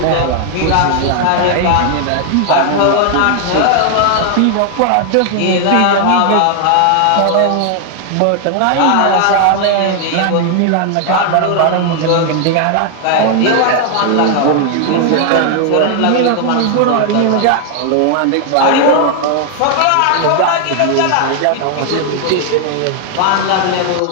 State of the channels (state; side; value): different; both; correlation 0.00